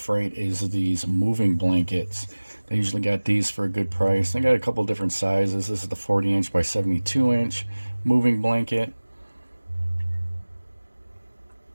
is these moving blankets. They usually got these for a good price. They got a couple different sizes. This is the 40-inch by 72-inch moving blanket.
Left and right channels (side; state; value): both; inverted; correlation -1.00